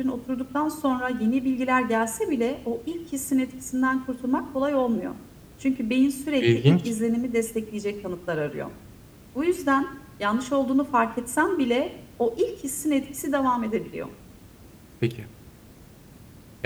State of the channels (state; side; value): identical; both; correlation 1.00